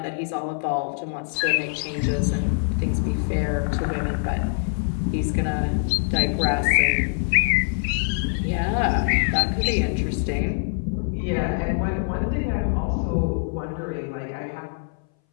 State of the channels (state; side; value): silent; right; 60 dB below the other